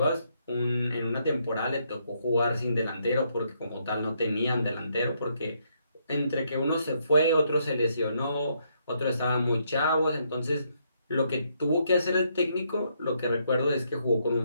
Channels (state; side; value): inverted; both; correlation -0.74